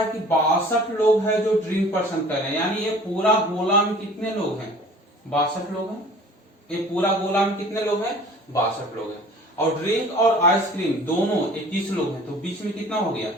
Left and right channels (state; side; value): normal; both; correlation 0.47